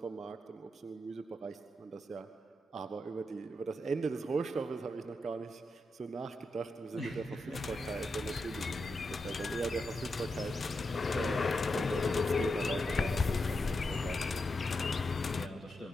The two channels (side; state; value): both; normal; correlation 0.86